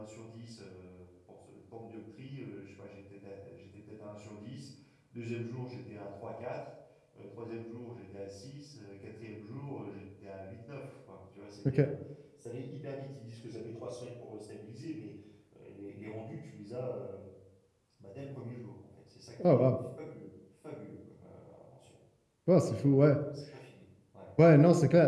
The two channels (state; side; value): identical; both; correlation 1.00